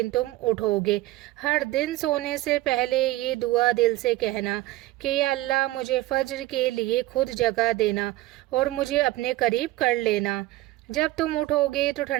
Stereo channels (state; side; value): quieter; left; 17.5 dB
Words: तुम उठोगे। हर दिन सोने से पहले ये दुआ दिल से कहना कि या अल्लाह मुझे फज्र के लिए खुद जगह देना और मुझे अपने करीब कर लेना। जब तुम उठोगे तो